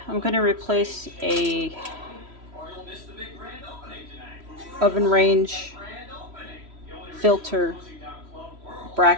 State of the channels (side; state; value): left; late; 3.1 ms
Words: I'm going to replace a oven range filter